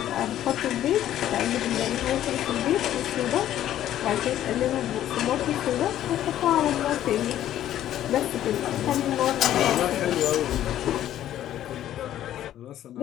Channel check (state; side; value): quieter; right; 12.1 dB